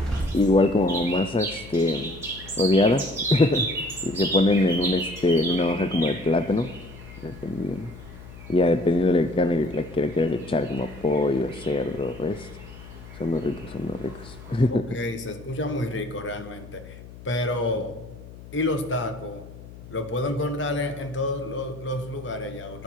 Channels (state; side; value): noise; left; hum, 17 dB below the sound